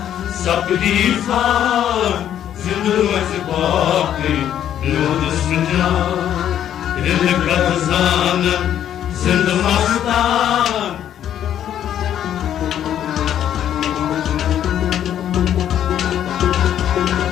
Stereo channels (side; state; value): right; quieter; 10.4 dB